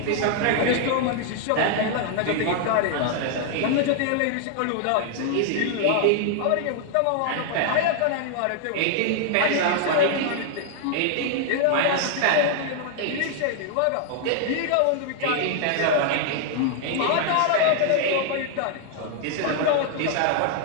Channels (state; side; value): different; both; correlation 0.00